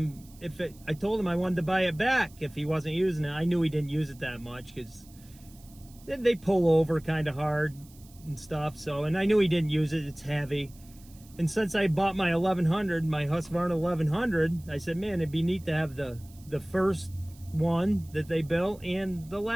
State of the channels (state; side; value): noise; right; hiss, 25 dB below the sound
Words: I told him I wanted to buy it back if he wasn't using it. I knew he didn't use it that much because they pull over kind of hard and stuff. So, and I knew he didn't use it. It's heavy. And since I bought my 1100, my Husqvarna 1100, I said, man, it'd be neat to have the first one that they built and the